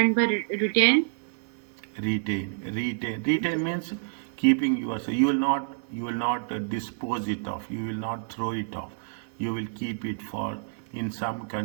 by retain. Retain means keeping yourself. You will not dispose it off. You will not throw it off. You will keep it for. In some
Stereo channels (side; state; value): left; silent; digital silence